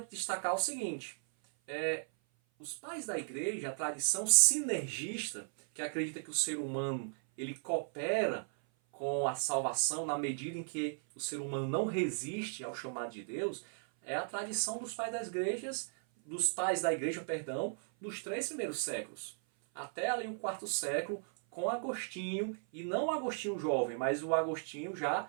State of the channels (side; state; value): left; silent; 54 dB below the other